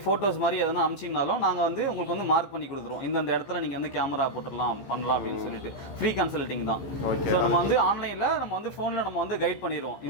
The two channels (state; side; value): late; right; 15 ms